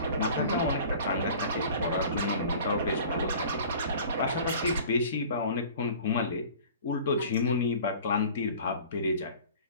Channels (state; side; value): inverted; both; correlation -0.44